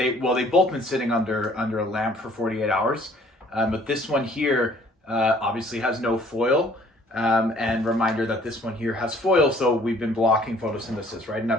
both been sitting under a lamp for 48 hours, but this one here obviously has no foil. And reminder that this one here has foil, so we've been blocking photosynthesis, right? And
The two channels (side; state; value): both; normal; correlation 0.57